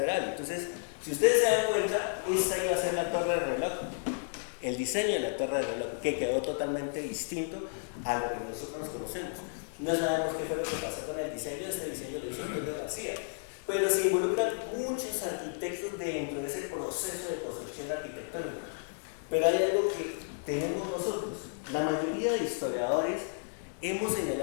Entonces, si ustedes se dan cuenta, esta iba a ser la torre de reloj. El diseño de la torre de reloj, que quedó totalmente distinto a lo que nosotros nos conocemos. No sabemos qué fue lo que pasó con el diseño, este diseño lo hizo Antonio García, pero se involucran muchos arquitectos dentro de ese proceso de construcción arquitectónica. Pero hay algo que tenemos nosotros, la mayoría de historiadores hemos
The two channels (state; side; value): silent; right; digital silence